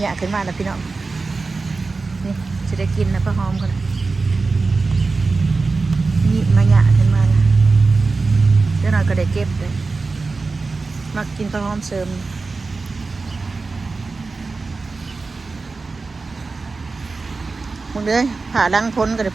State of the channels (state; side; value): quieter; left; 4.0 dB